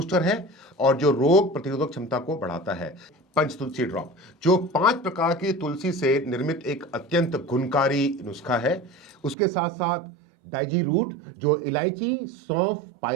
है और जो रोग प्रतिरोधक क्षमता को बढ़ाता है। पंच तुलसी ड्रॉप जो 5 प्रकार की तुलसी से निर्मित एक अत्यंत गुणकारी नुस्खा है। उसके साथ साथ डाइजी रूट, जो इलायची, सौंफ,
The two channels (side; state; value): left; drops out; at 9.3 s